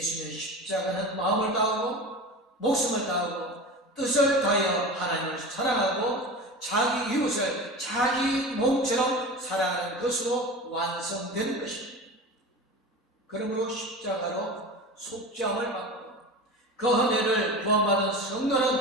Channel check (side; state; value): both; normal; correlation 0.31